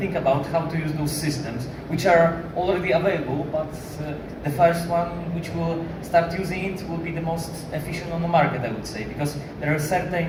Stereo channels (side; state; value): both; identical; correlation 1.00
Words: about how to use those systems, which are already available, but the first one which will start using it will be the most efficient on the market, I would say, because there are